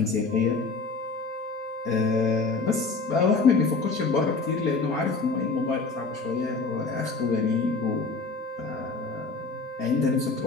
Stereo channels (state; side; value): quieter; right; 4.0 dB